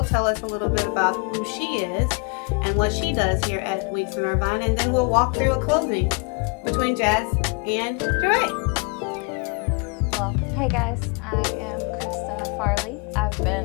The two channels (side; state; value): right; quieter; 33.2 dB